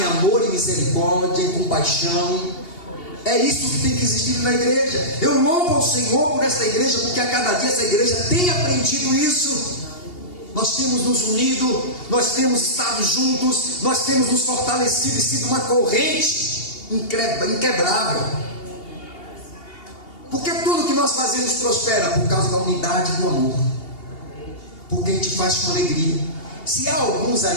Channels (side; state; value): right; late; 2.8 ms